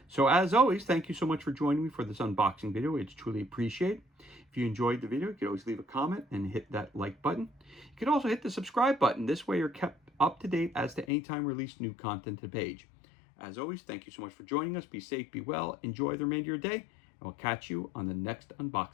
So as always, thank you so much for joining me for this unboxing video. It's truly appreciated. If you enjoyed the video, you can always leave a comment and hit that like button. You can also hit the subscribe button. This way you're kept up to date as to any time we release new content to the page. As always, thank you so much for joining us. Be safe, be well, enjoy the remainder of your day, and we'll catch you on the next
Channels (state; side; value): drops out; right; at 11.1 s